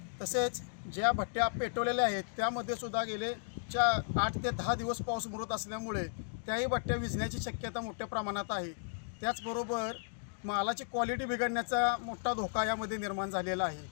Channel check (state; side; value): silent; right; digital silence